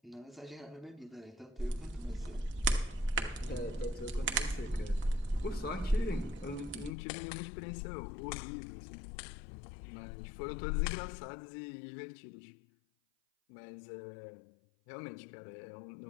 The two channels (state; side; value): drops out; right; at 6.9 s